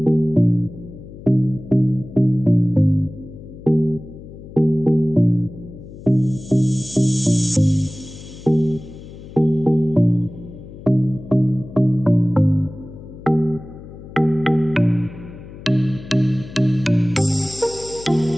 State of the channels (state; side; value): noise; left; hum, 16 dB below the sound